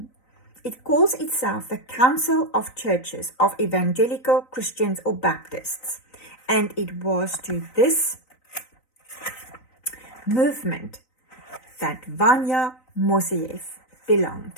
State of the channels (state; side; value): late; right; 3.9 ms